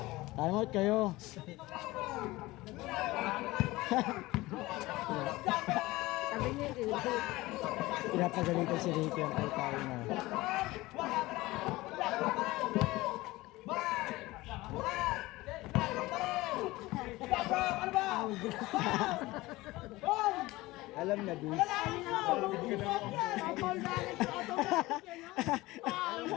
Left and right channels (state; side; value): quieter; right; 19.6 dB